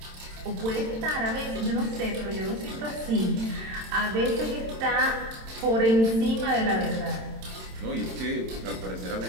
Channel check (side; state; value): left; late; 27 ms